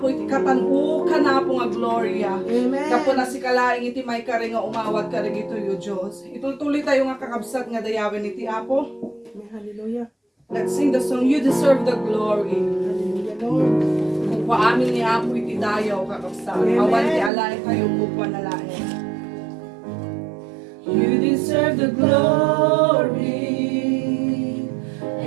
iti katan-u kan Apo nga gloria. Amen. Kapo na si kalaing iti may kare nga umawat ka dagito yo Dios. Itultuloy tayo nga kakabsat nga dayawin iti Apo. Hallelujah. Let's sing the song You Deserve the Glory. Hallelujah, Lord. Kung paamin ni Apo iti dayaw kakabsat. Awan ti alain kayo buwan na lain. You deserve the glory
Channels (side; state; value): left; drops out; at 17.3 s